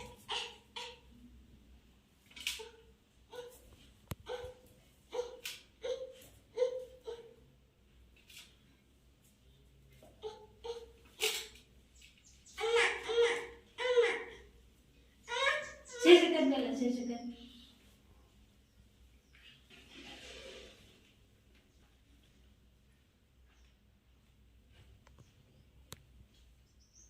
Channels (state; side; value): identical; both; correlation 1.00